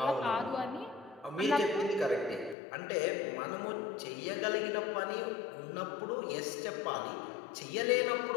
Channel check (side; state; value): right; drops out; at 2.6 s